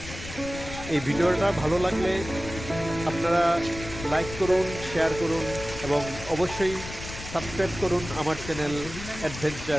এই ভিডিওটা ভালো লাগলে আপনারা লাইক করুন, শেয়ার করুন এবং অবশ্যই সাবস্ক্রাইব করুন আমার চ্যানেল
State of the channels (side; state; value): left; noise; rumble, 11 dB below the sound